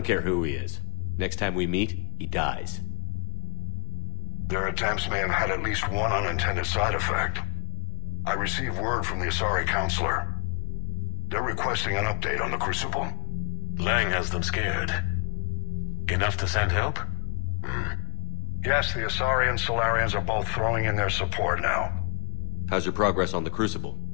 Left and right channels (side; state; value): right; quieter; 39.8 dB